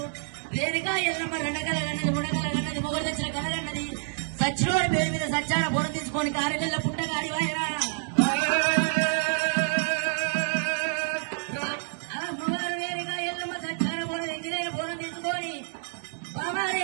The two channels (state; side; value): silent; left; 59 dB below the other